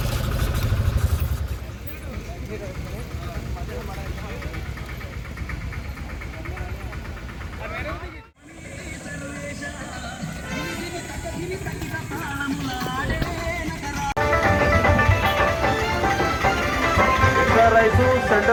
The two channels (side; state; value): both; identical; correlation 1.00